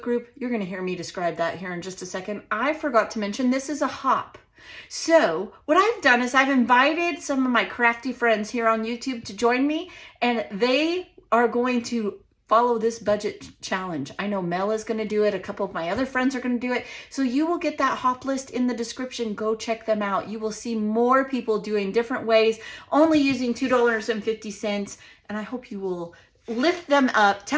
group. You're going to hear me describe that here in just a second. I forgot to mention this is a hop. So what I've done is I've invited some of my crafty friends here on YouTube to join me, and they are going to follow this budget challenge. I know Mel is going to do it. A couple of my other friends are going to do it. So you will get that hop list in the description. Go check them out. You will see more people doing different ways, only using $2.50. And I hope you will lift them up,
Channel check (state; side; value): identical; both; correlation 1.00